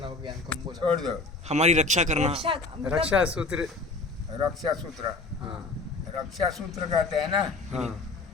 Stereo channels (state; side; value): quieter; right; 3.6 dB